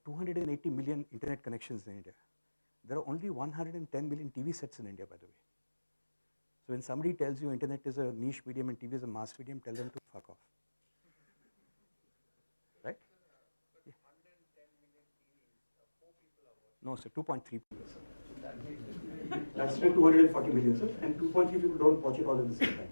280 million internet connections in India. There are only 110 million TV sets in India, by the way. So when somebody tells you internet is a niche medium and TV is a mass medium, tell them to fuck off. Right? Yeah. No, sir, 2.3 people, sir. That's still 240 million, sir, and 2.3 people don't watch it all at the same time.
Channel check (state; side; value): inverted; both; correlation -1.00